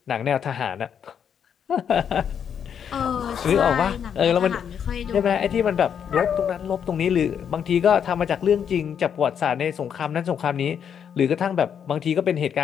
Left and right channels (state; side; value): quieter; right; 8.0 dB